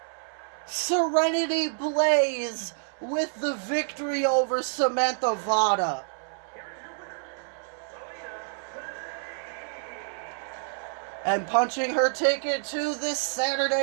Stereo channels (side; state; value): left; silent; 59 dB below the other